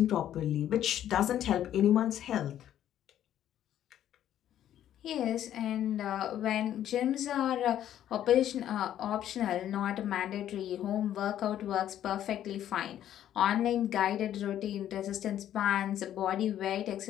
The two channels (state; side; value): quieter; right; 11.3 dB